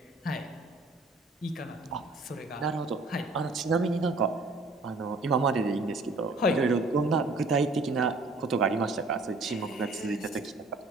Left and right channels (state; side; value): quieter; left; 3.2 dB